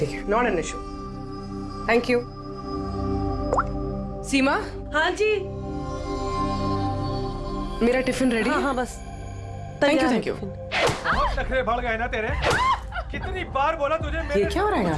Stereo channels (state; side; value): identical; both; correlation 1.00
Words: not an issue. Thank you. Seema. हाँ जी। मेरा टिफिन रेडी? हाँ बस। Thank you. बहुत नखरे बढ़ गए ना तेरे। कितनी बार बोला तुझे मेरे ये क्या हो रहा है यहाँ